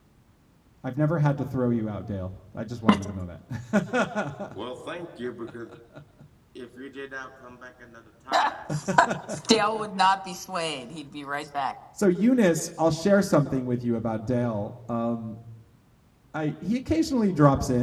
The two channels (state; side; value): identical; both; correlation 1.00